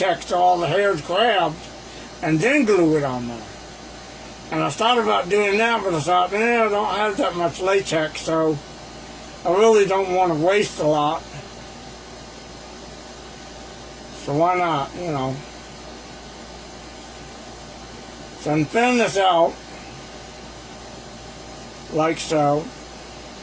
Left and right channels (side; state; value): both; identical; correlation 1.00